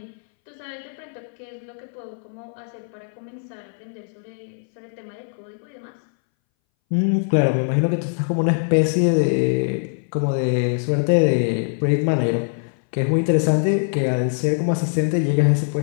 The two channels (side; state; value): right; silent; 62 dB below the other